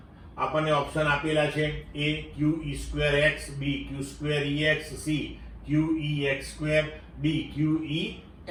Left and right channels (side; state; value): both; identical; correlation 1.00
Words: આપણને ઓપ્શન આપેલા છે A qe2x, B q2ex, C qex2, D